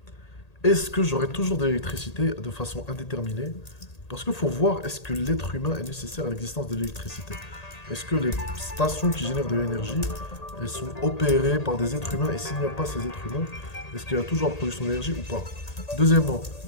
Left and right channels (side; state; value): right; late; 1.8 ms